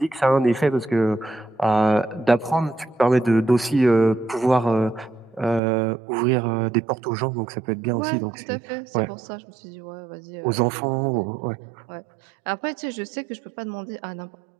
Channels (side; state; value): left; drops out; at 5.6 s